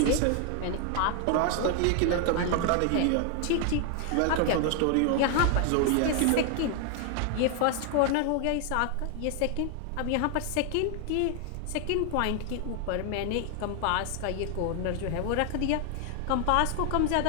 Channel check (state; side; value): different; both; correlation 0.00